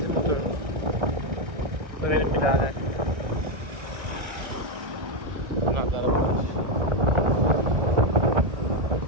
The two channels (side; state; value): left; late; 1.3 ms